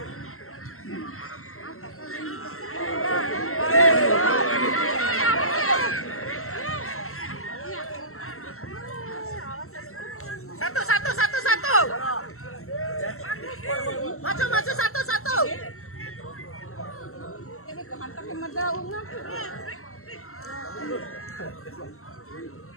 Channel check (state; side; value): late; right; 0.63 ms